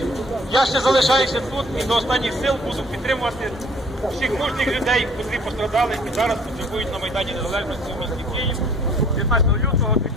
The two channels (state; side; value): normal; both; correlation 0.56